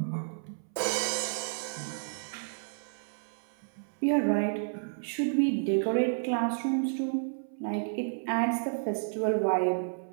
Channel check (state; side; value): silent; left; 57 dB below the other